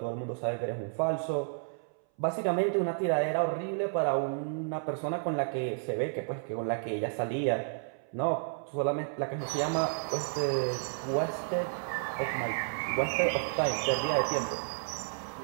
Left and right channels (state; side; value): silent; left; 57 dB below the other